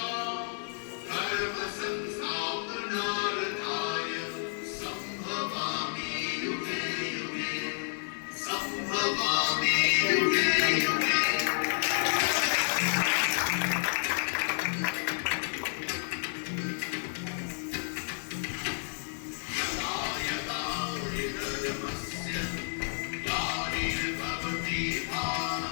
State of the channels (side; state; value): right; silent; digital silence